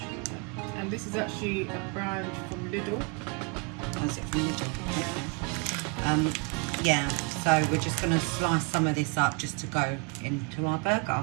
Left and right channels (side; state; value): left; quieter; 31.3 dB